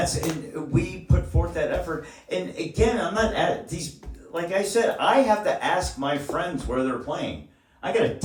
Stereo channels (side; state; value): both; identical; correlation 1.00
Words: we put forth that effort. And again, I'm not at these. Like I said, I have to ask my friends where they're playing. I gotta